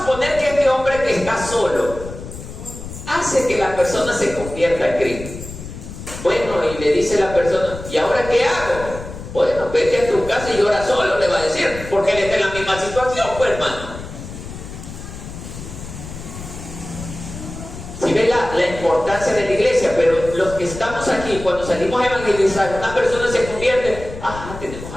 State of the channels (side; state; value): left; noise; rumble, 11 dB below the sound